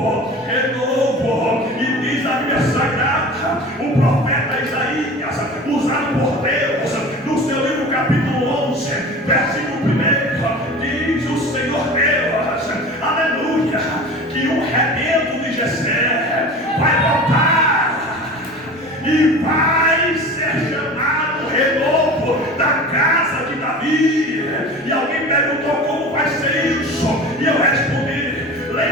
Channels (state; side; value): noise; right; rumble, 29 dB below the sound